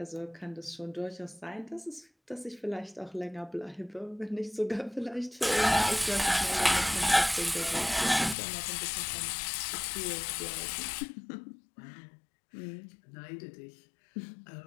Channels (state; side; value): drops out; right; at 8.3 s